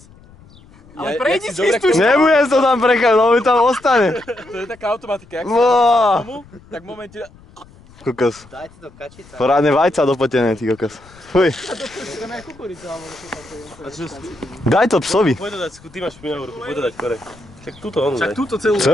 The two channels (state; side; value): noise; left; rumble, 25 dB below the sound